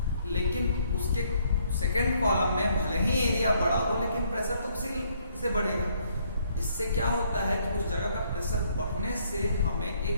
लेकिन उसके सेकंड कॉलम में भले ही एरिया बड़ा हो लेकिन प्रेशर तो उसी से बढ़ेगा। इससे क्या होता है कि उस जगह का प्रेशर बढ़ने से हमें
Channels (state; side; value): inverted; both; correlation -0.68